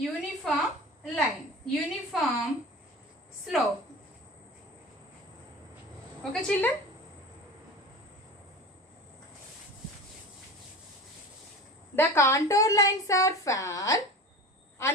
line, uniform slope. Okay, children? The contour lines are fair,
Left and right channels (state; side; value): normal; both; correlation 0.34